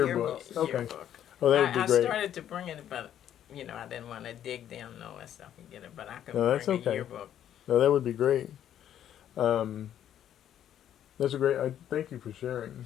yearbooks. Okay. Yearbook. Oh, that would be I great. started to bring it, but I didn't want to dig down and all that stuff and get it. But I could No, that's bring okay. a yearbook. No, that would be great. That's a great. I thank you for sharing.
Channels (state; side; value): quieter; right; 10.6 dB